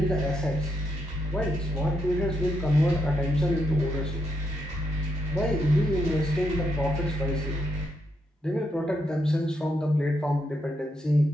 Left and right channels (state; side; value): normal; both; correlation 0.80